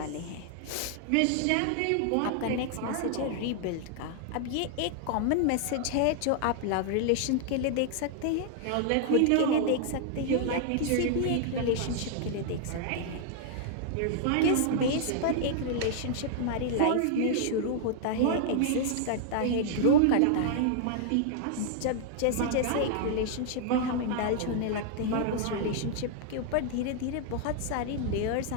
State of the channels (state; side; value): different; both; correlation -0.01